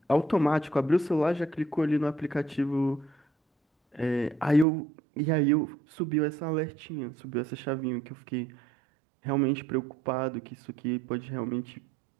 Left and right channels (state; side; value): drops out; left; at 4.7 s